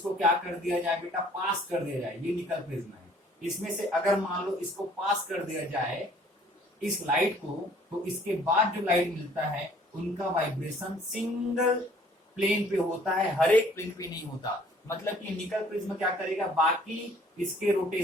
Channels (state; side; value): normal; both; correlation 0.57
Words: क्या कर दिया जाए बेटा? पास कर दिया जाए। ये निकल प्रिज्म है, इसमें से अगर मान लो इसको पास कर दिया जाए इस लाइट को, तो इसके बाद जो लाइट मिलता है उनका वाइब्रेशन सिंगल प्लेन पे होता है, हर एक प्लेन पे नहीं होता। मतलब कि निकल प्रिज्म क्या करेगा? बाकी इसके